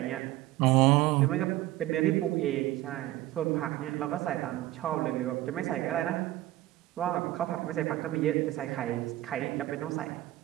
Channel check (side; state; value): left; quieter; 16.1 dB